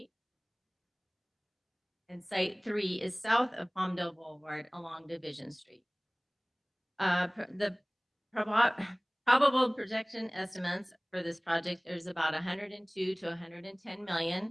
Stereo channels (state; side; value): identical; both; correlation 1.00